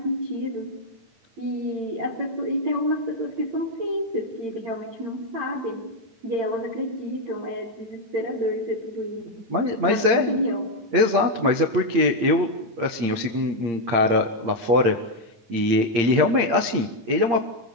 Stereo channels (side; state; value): left; late; 8.7 ms